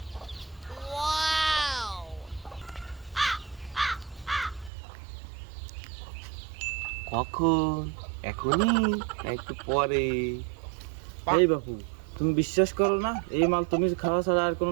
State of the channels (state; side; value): drops out; left; at 4.7 s